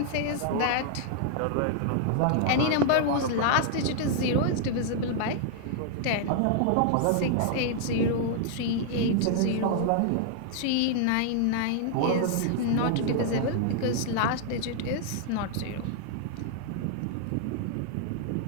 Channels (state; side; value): different; both; correlation -0.01